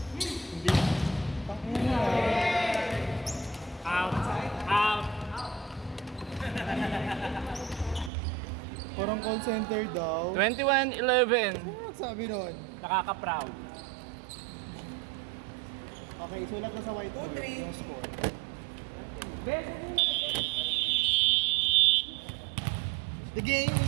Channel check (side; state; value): left; drops out; at 8.1 s